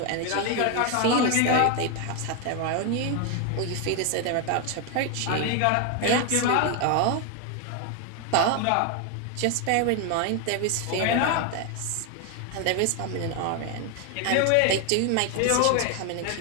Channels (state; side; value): different; both; correlation 0.01